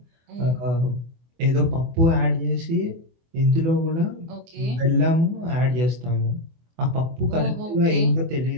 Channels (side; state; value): left; late; 24 ms